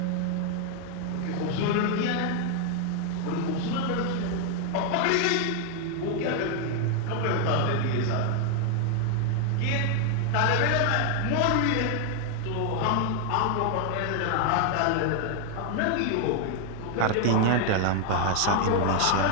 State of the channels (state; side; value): different; both; correlation 0.00